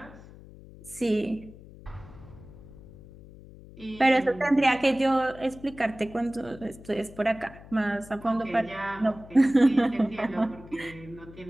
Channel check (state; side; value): noise; left; hum, 19 dB below the sound